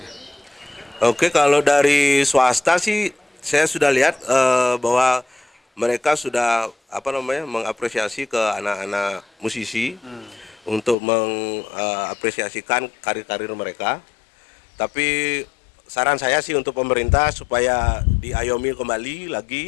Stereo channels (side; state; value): right; drops out; at 11.0 s